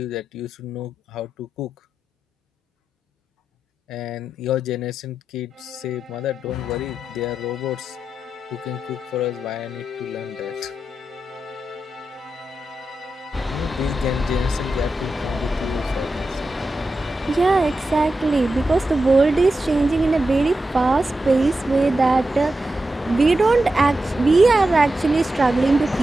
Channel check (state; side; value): normal; both; correlation 0.90